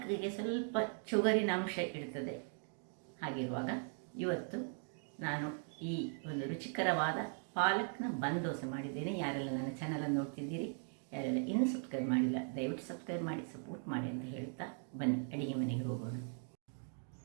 ಸ್ವಲ್ಪ ಚುಗರಿನ ಅಂಶ ಇರ್ತದೆ. ಹಾಗಿರುವಾಗ ಇವತ್ತು ನಾನು ಈ ಒಂದು ರುಚಿಕರವಾದ ಪಾಲಕ್ನ ಬನ್ ದೋಸೆ ಮಾಡಿದ್ದೇನೆ. ಯಾರೆಲ್ಲ ನನ್ನ ಚಾನಲನ್ನು ನೋಡ್ತಿದ್ದೀರಿ, ಯಾರೆಲ್ಲ ಇನ್ನೂ ಸಬ್ಸ್ಕ್ರೈಬ್ ಮಾಡಿಲ್ಲ, ದಯವಿಟ್ಟು ಸಬ್ಸ್ಕ್ರೈಬ್ ಮಾಡಿ ಸಪೋರ್ಟ್ ಮಾಡಿ ಅಂತ ಹೇಳ್ತಾ ಬನ್ನಿ ಅಡಿಗೆ ಮನೆಗೆ ಹೋಗೋಣ.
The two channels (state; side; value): silent; left; 51 dB below the other